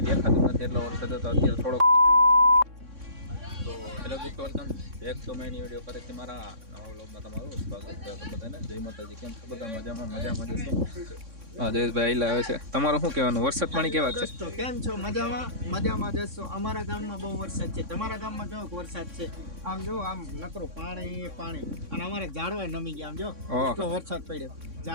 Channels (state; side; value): late; left; 3.6 ms